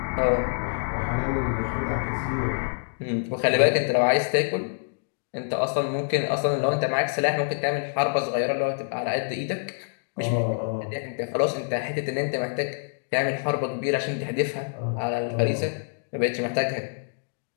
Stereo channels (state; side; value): silent; right; digital silence